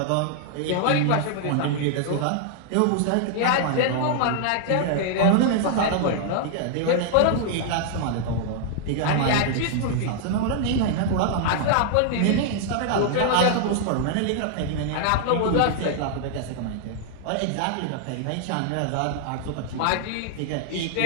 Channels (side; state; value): both; different; correlation -0.01